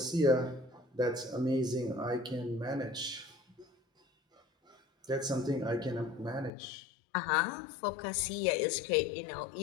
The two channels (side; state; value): right; drops out; at 6.5 s